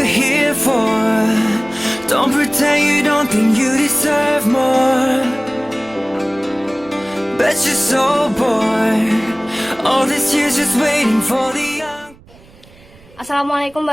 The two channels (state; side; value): noise; right; rumble, 26 dB below the sound